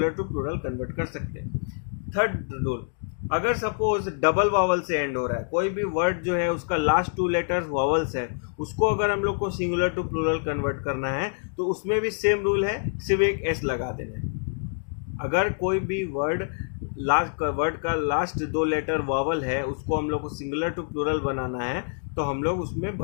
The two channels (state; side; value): silent; right; digital silence